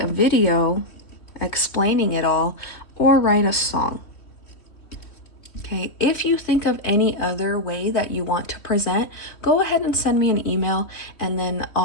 a video explaining it all, or write a song. Okay, if you think of any other way that you want to present, go ahead and send me an email, and then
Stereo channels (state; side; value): late; right; 3.1 ms